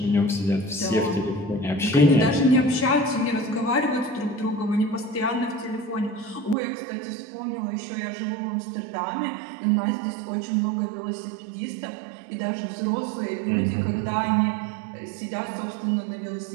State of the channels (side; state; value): left; drops out; at 6.6 s